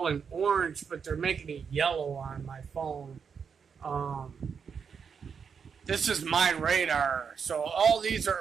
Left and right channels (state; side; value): quieter; left; 6.5 dB